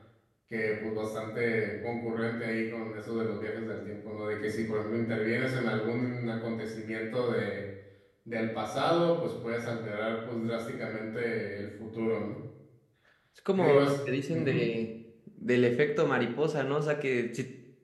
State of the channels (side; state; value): both; identical; correlation 1.00